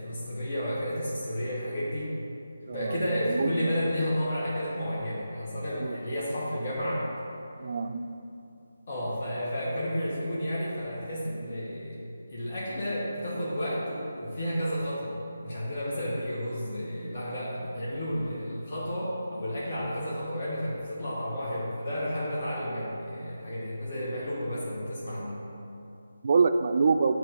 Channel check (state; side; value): inverted; both; correlation -0.87